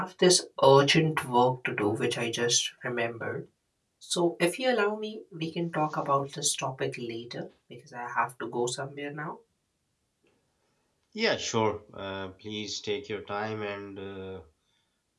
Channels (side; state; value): both; identical; correlation 1.00